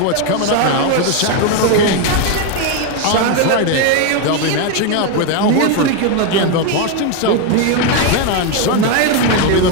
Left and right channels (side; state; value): both; different; correlation 0.01